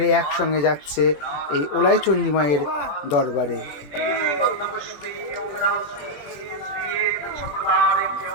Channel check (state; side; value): late; right; 20 ms